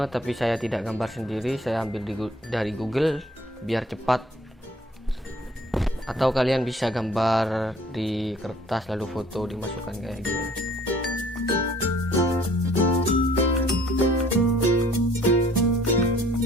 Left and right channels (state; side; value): normal; both; correlation 0.56